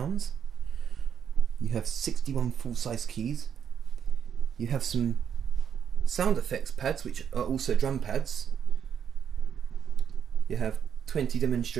You have 61 full-size keys. You have some sound effects pads, which are also drum pads. You have 20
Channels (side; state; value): left; quieter; 8.1 dB